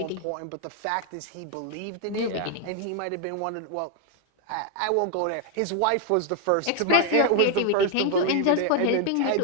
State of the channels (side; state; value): both; different; correlation 0.01